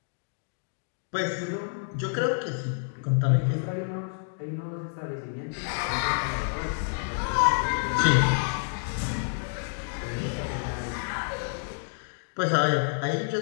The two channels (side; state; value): right; silent; digital silence